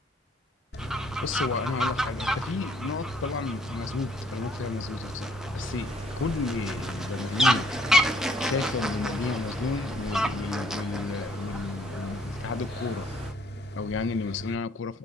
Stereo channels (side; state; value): both; normal; correlation 0.63